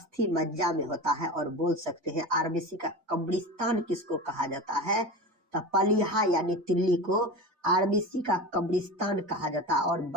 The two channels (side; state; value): left; late; 2.6 ms